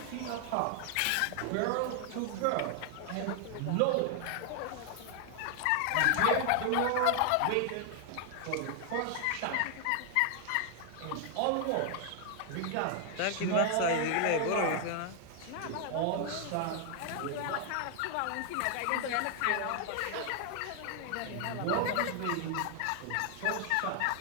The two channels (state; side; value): different; both; correlation 0.00